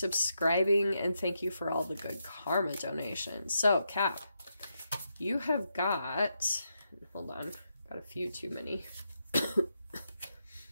and thank you for all the good karma donations. So, Cap, you have got, hold on, got a few too many.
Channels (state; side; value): inverted; both; correlation -0.83